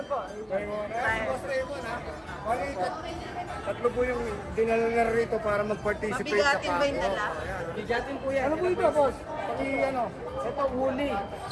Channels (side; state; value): both; identical; correlation 1.00